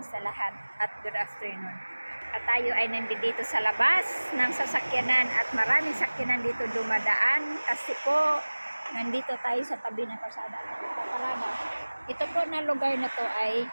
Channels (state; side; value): inverted; both; correlation -1.00